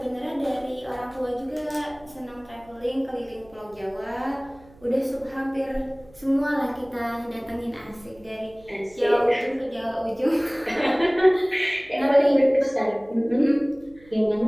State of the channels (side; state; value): right; noise; hum, 25 dB below the sound